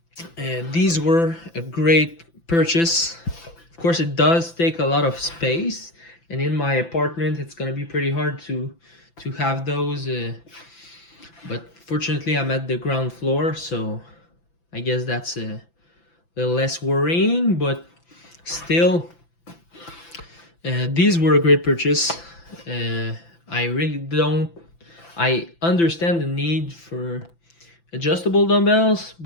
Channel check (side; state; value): right; late; 5.9 ms